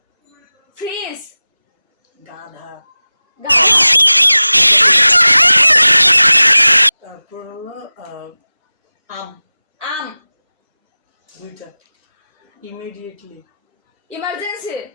ফ্রিজ গাধা। তারপর হলো আম দুইটা। ইমিডিয়েটলি ইমার্জেন্সি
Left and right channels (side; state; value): both; inverted; correlation -0.98